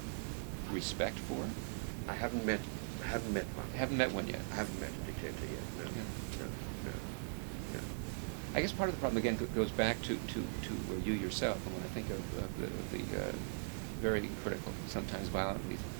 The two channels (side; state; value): left; silent; digital silence